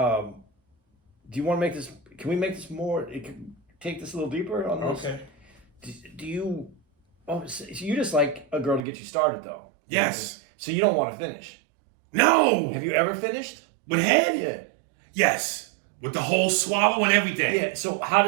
you want to make this, can we make this more, take this a little deeper on this? Okay. Do you, so you just like a girl to get you started though? Yes. So you don't want to finish? No. Have you ever finished? With head? Yeah. Yes. With the whole swallow and everything. Yeah. So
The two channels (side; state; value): left; drops out; at 8.8 s